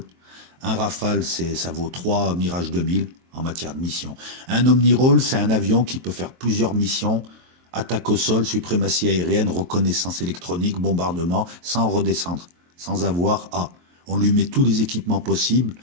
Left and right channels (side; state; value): left; late; 23 ms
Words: Un Rafale, ça vaut 3 Mirage 2000 en matière de mission. Un omni-rôle, c'est un avion qui peut faire plusieurs missions, attaque au sol, suprématie aérienne, reconnaissance électronique, bombardement, sans redescendre, sans avoir à. On lui met tous les équipements possibles,